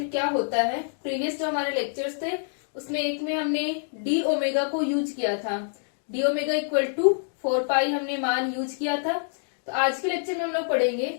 क्या होता है। प्रीवियस जो हमारे लेक्चर्स थे उसमें एक में हमने डी ओमेगा को यूज किया था, डी ओमेगा इक्वल टू 4 पाई हमने मान यूज किया था। तो आज के लेक्चर में हम लोग पढ़ेंगे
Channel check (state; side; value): silent; right; digital silence